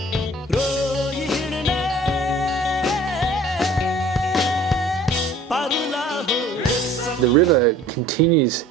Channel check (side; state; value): both; normal; correlation 0.50